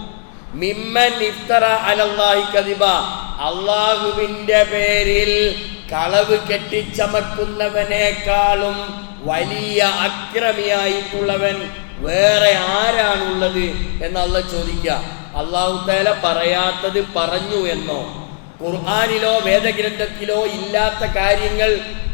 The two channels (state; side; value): silent; right; digital silence